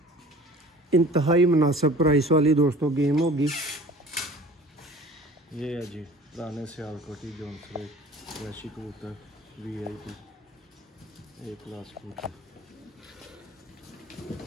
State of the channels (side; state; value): both; normal; correlation 0.45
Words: इंतहाई मुनासिब प्राइस वाली दोस्तों गेम होगी। ये है जी पुराने सियालकोटी जोंसरे वैशी कबूतर वीआईपी एक क्लास कबूतर।